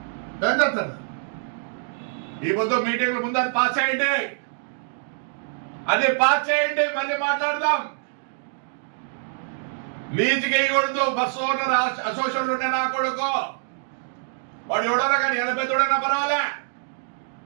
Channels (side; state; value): left; silent; digital silence